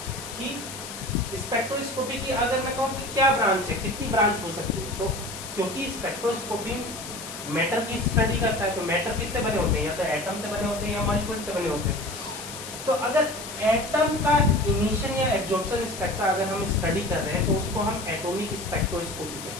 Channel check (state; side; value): noise; left; hiss, 11 dB below the sound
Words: कि स्पेक्ट्रोस्कोपी की अगर मैं कहूं कि क्या ब्रांच है, कितनी ब्रांच हो सकती है, तो क्योंकि स्पेक्ट्रोस्कोपी मैटर की स्टडी करता है तो मैटर किससे बने होते हैं? या तो एटम से बने होते हैं या मॉलिक्यूल से बने होते हैं। तो अगर एटम का इमिशन या एब्जॉर्प्शन स्पेक्ट्रा अगर हम स्टडी कर रहे हैं तो उसको हम एटॉमिक स्पेक्ट्रोस्कोपी